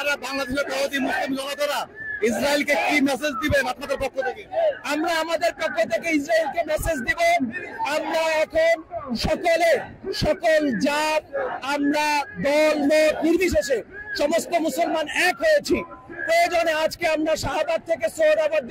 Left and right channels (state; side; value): identical; both; correlation 1.00